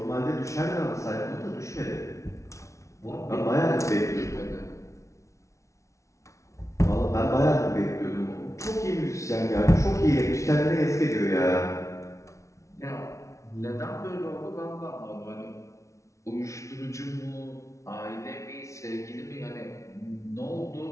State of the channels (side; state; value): right; late; 0.14 ms